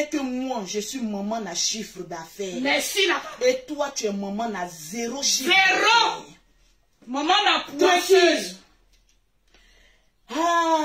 que moi, je suis maman à chiffre d'affaires. Merci, la Et toi, tu es maman à zéro chiffre Zéro. d'affaires. Maman la poisseuse.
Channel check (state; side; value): identical; both; correlation 1.00